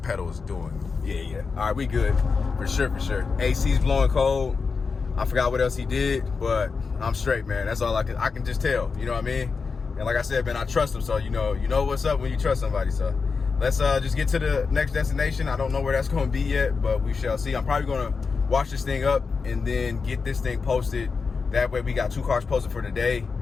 pedal is doing. Yeah. All right, we good for sure. AC's blowing cold. I forgot what else he did, but I'm straight, man. That's all I can just tell. You know what I mean? And like I said, man, I trust him. So you know what's up when you trust somebody. So let's just get to the next destination. I don't know where that's going to be yet, but we shall see. I'm probably going to wash this thing up and then get this thing posted. That way we got 2 cars posted for today,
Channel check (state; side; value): quieter; right; 4.9 dB